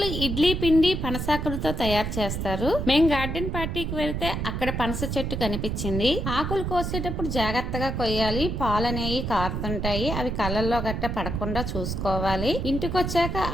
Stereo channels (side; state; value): right; noise; rumble, 3 dB below the sound